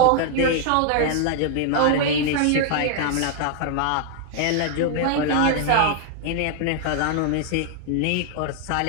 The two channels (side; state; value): both; different; correlation 0.00